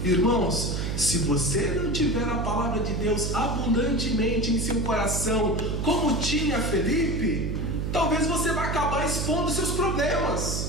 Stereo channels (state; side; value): noise; right; hum, 1 dB below the sound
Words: Irmãos, se você não tiver a palavra de Deus abundantemente em seu coração, como tinha Felipe, talvez você vai acabar expondo seus